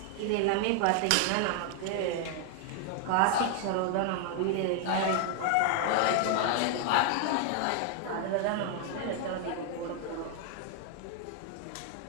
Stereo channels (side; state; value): both; different; correlation 0.00